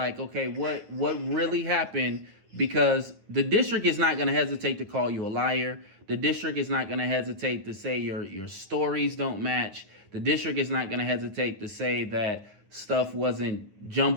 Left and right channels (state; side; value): late; left; 9.8 ms